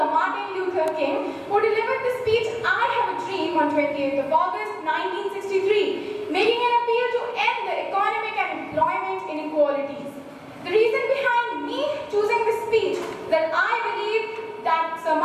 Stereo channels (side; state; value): both; identical; correlation 1.00